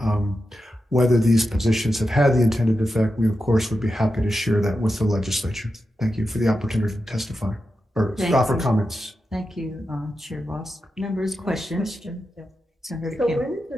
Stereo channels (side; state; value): both; normal; correlation 0.89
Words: whether these positions have had the intended effect, we of course would be happy to share that with the legislature. Thank you for the opportunity to testify or offer comments. Thank you, Chair Boss. Members, questions? Senator So Kim. when is